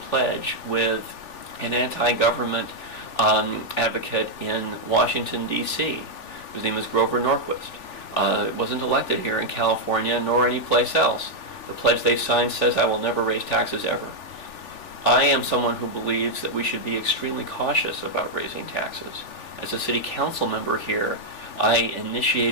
with an anti-government advocate in Washington, D.C., whose name is Grover Norquist. Wasn't elected here in California nor any place else. The pledge they signed says, "I will never raise taxes ever." I am someone who believes that we should be extremely cautious about raising taxes. As a city council member here, I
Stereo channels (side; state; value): right; late; 3.4 ms